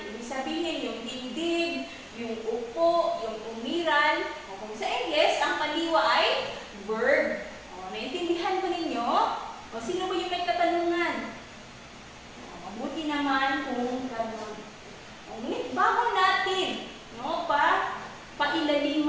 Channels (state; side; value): identical; both; correlation 1.00